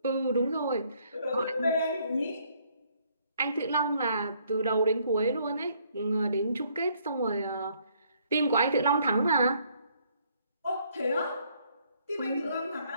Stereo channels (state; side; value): inverted; both; correlation -0.66